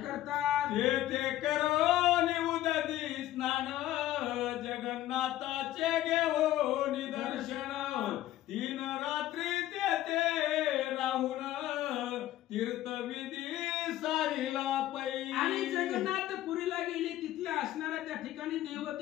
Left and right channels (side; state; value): right; quieter; 14.1 dB